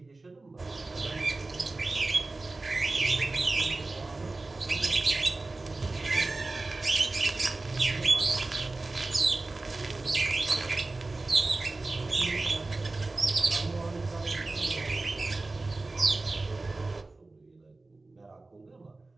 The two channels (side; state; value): left; quieter; 3.3 dB